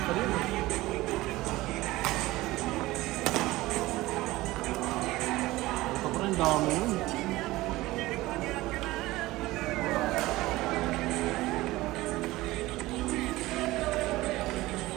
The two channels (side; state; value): left; quieter; 18.6 dB